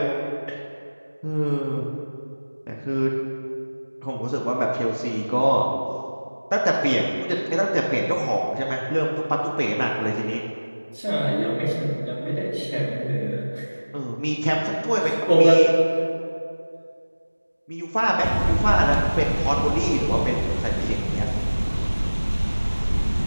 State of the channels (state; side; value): inverted; both; correlation -1.00